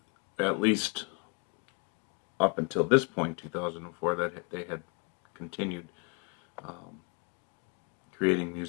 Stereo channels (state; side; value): quieter; right; 33.0 dB